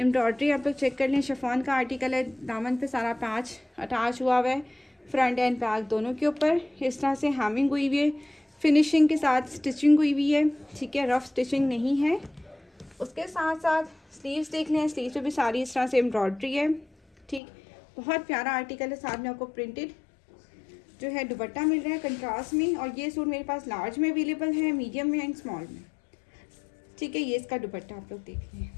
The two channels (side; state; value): right; drops out; at 17.4 s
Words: आप लोग चेक कर लें। शिफॉन का आर्टिकल है, दामन पे सारा पैच अटैच हुआ है, फ्रंट एंड बैक दोनों के ऊपर इस तरह से हैमिंग हुई हुई है, फिनिशिंग के साथ स्टिचिंग हुई हुई है। ठीक है, रफ स्टिचिंग नहीं है। उसके साथ साथ स्लीव्स देख लें, स्लीव्स पे भी सारी इस तरह से एम्ब्रॉयडरी है। ठीक, बहुत प्यारा आर्टिकल है। साथ में आपको प्रिंटेड जो है दुपट्टा मिल रहा है कंट्रास्ट में। और ये सूट मेरे पास लार्ज में अवेलेबल है, मीडियम में एंड स्मॉल में। ठीक है, ये इसका दुपट्टा आप लोग देख लें।